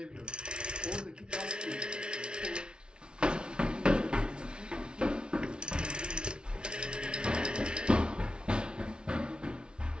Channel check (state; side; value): late; left; 0.056 ms